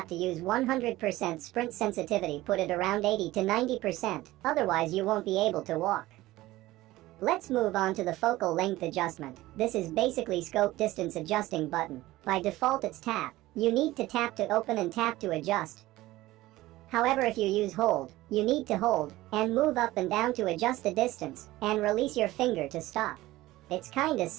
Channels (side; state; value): left; quieter; 17.4 dB